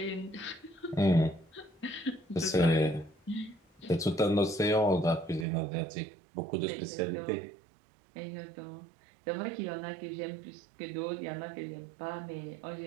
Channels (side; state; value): left; drops out; at 5.5 s